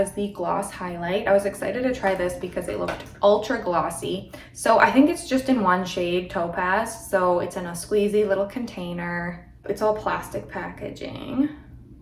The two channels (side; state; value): both; identical; correlation 1.00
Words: the gloss highlight. I was excited to try this because it looked ultra glossy. So I think it's just in one shade, Topaz. So it's in a squeezy little container. It's all plastic packaging.